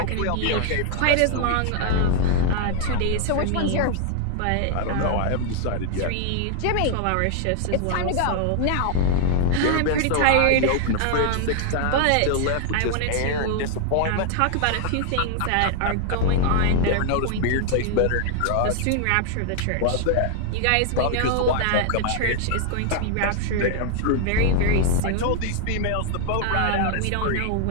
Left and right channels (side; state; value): both; different; correlation 0.00